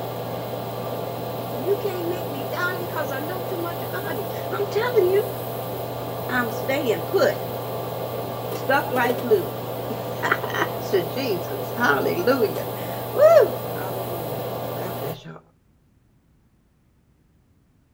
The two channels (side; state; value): both; identical; correlation 1.00